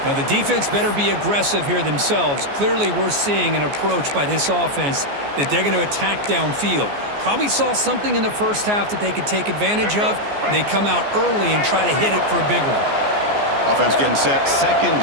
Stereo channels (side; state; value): left; late; 14 ms